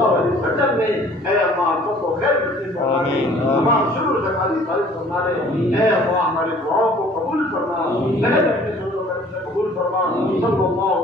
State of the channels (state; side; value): normal; both; correlation 0.53